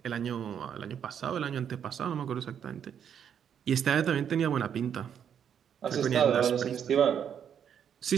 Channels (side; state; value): left; quieter; 8.5 dB